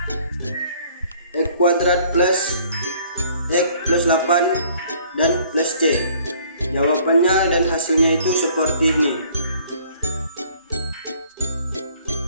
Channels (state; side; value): inverted; both; correlation -0.57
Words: X kuadrat plus X plus 8 dan plus C. Jawabannya dan hasilnya itu seperti ini.